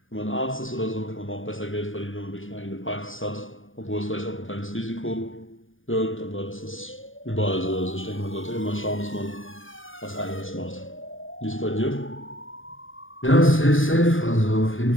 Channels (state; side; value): late; right; 0.58 ms